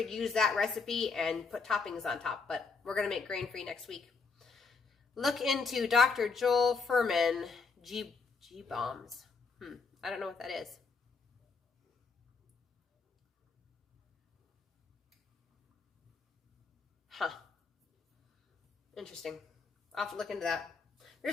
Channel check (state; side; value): quieter; right; 4.7 dB